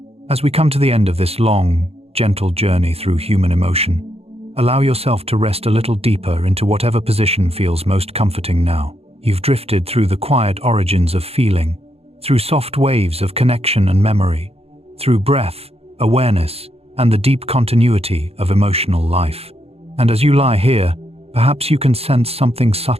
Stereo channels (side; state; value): left; late; 0.29 ms